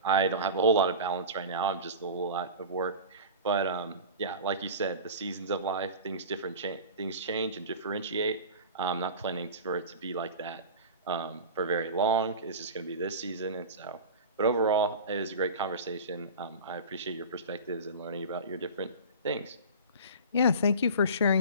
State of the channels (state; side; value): inverted; both; correlation -0.33